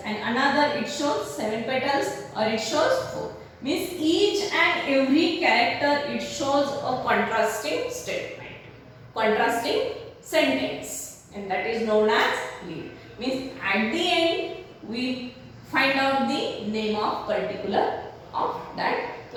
and another it shows 7 petals or it shows 4. Means each and every character it shows a contrasting statement, contrasting sentence, and that is known as lead. Means at the end we find out the name of particular of that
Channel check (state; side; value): identical; both; correlation 1.00